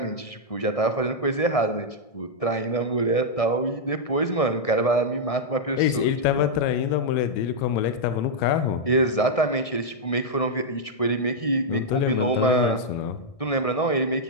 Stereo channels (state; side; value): late; right; 1.6 ms